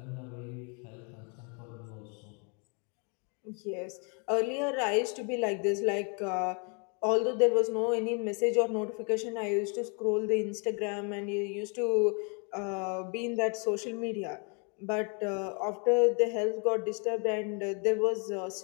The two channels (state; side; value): quieter; right; 36.2 dB